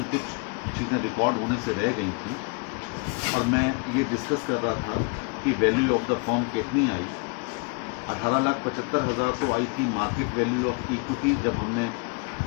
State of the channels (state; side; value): quieter; right; 32.7 dB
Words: कुछ चीज़ें रिकॉर्ड होने से रह गई थी और मैं ये डिस्कस कर रहा था कि वैल्यू ऑफ द फर्म कितनी आई। 18,75,000 तो आई थी मार्केट वैल्यू ऑफ इक्विटी, जब हमने